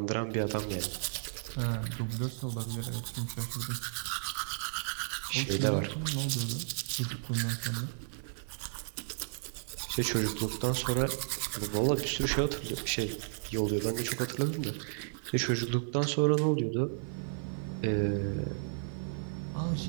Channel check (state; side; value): silent; left; 55 dB below the other